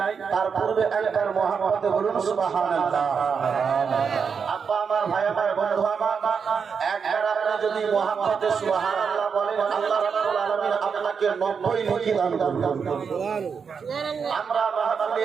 তার পূর্বে একবার মোহাম্মদে বলুন সুবহানাল্লাহ। আব্বা আমার, ভাই আমার, বন্ধু আমার, একবার আপনি যদি মোহাম্মদে সুবহানাল্লাহ বলেন, আল্লাহ রাব্বুল আলামিন আপনাকে 90 নেকি দান করবেন। আমরা মাহফিলে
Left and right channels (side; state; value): left; quieter; 6.1 dB